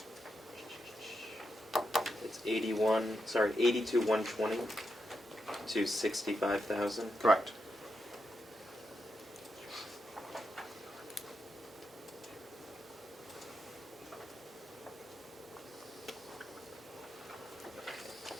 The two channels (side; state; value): both; normal; correlation 0.85